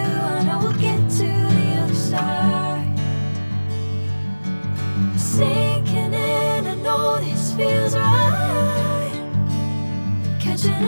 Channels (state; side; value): inverted; both; correlation -1.00